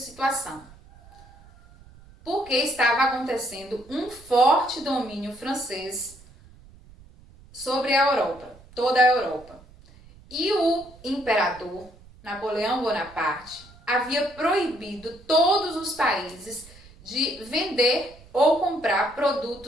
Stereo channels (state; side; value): noise; right; rumble, 23 dB below the sound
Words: porque estava acontecendo um forte domínio francês sobre a Europa, toda a Europa. E o imperador Napoleão Bonaparte havia proibido todos os países de vender ou comprar